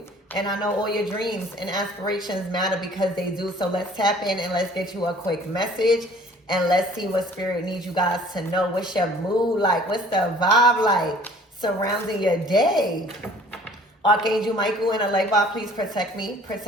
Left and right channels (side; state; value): both; normal; correlation 0.52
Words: and I know all your dreams and aspirations matter because they do. So let's tap in and let's get you a quick message, and let's see what spirit needs you guys to know. What's your mood like? What's the vibe like surrounding your day? Archangel Michael and a light vibe, please protect me,